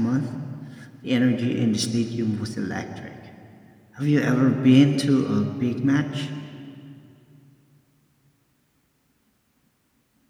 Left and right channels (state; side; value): identical; both; correlation 1.00